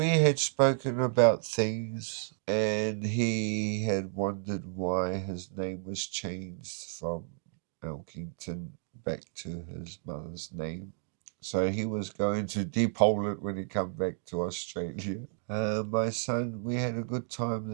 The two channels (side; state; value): left; silent; 57 dB below the other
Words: had spoken about things, and he had wondered why his name was changed from Elkington back to his mother's name. So he was going to depole it when he come back to Australia. My son, we had a good time